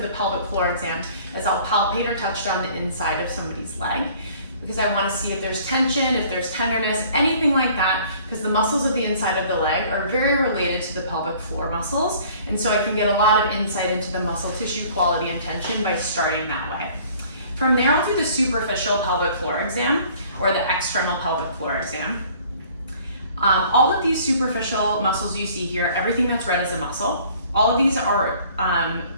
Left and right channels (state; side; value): inverted; both; correlation -0.53